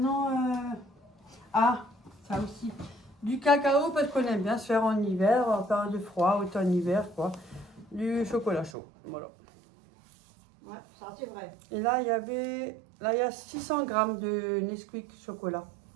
ah, ça aussi. Du cacao, parce qu'on aime bien se faire en hiver, en période de froid, automne-hiver, quoi. Du chocolat chaud, voilà. Ouais, ça c'est vrai. Et là, il y avait... Là, il y a 600 grammes de Nesquik chocolat.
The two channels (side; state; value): left; drops out; at 8.7 s